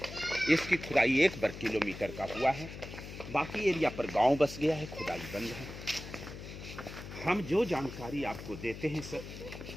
इसकी खुदाई 1 वर्ग किलोमीटर का हुआ है, बाकी एरिया पर गांव बस गया है, खुदाई बंद है। हम जो जानकारी आपको देते हैं सर,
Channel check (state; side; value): noise; left; hum, 11 dB below the sound